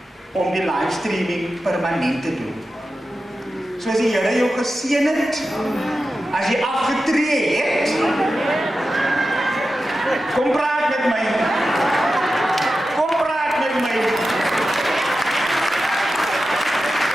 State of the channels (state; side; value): normal; both; correlation 0.92